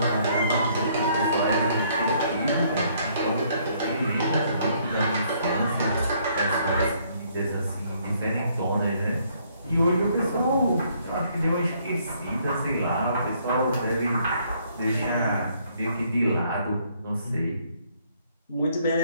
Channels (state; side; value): inverted; both; correlation -0.67